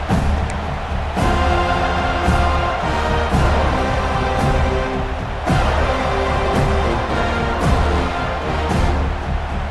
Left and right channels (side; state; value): both; identical; correlation 1.00